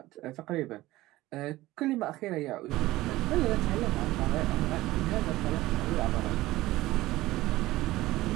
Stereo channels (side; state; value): left; quieter; 17.5 dB